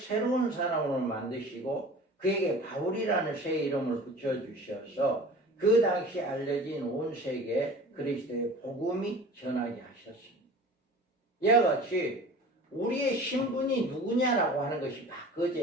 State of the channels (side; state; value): both; normal; correlation 0.41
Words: 사람으로 만드시고 그에게 바울이라는 새 이름을 붙여주셔서 그 당시 알려진 온 세계에 그리스도의 복음이 전하게 하셨습니다. 이와 같이 우리의 신분이 누구냐라고 하는 것이